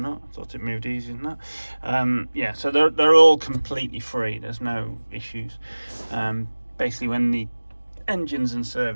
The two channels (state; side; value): inverted; both; correlation -1.00